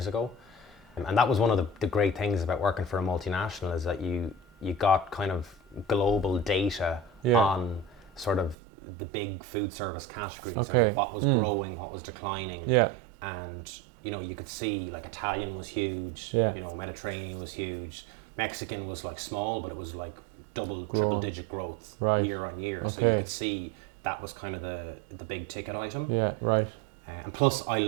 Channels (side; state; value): left; drops out; at 8.6 s